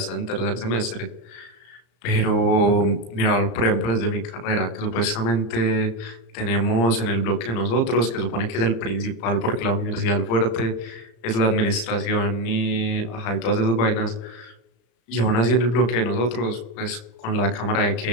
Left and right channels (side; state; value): right; late; 34 ms